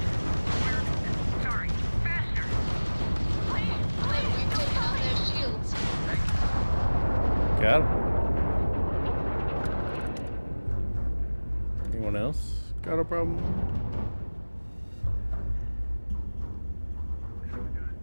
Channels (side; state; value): both; inverted; correlation -1.00